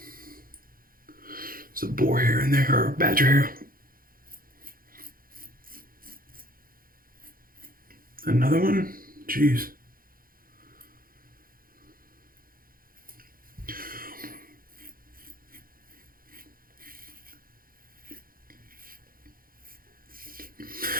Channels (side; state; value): left; late; 0.42 ms